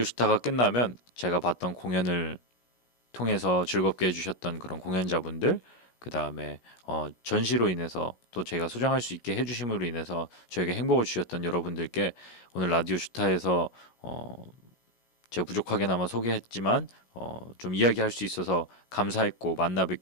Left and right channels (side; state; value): right; late; 17 ms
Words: 슈타가 끝나면 제가 봤던 공연을 통해서 즐겁게 해주셨던 그런 공연자분들, 그 다음에 전시로 인해서 또 제가 소장할 수 있게 해주심으로 인해서 저에게 행복을 주셨던 여러분들께 오늘 라디오 슈타에서 제가 부족하게나마 소개했지만 좀 이야기할 수 있어서 감사했고, 만나